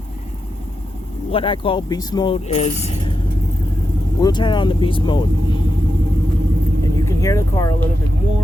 what I call beast mode is, we'll turn on the beast mode and you can hear the car a little bit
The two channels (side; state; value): both; normal; correlation 0.88